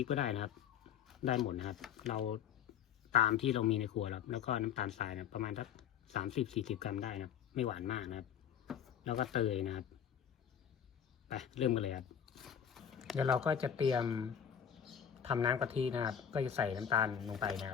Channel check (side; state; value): right; quieter; 8.7 dB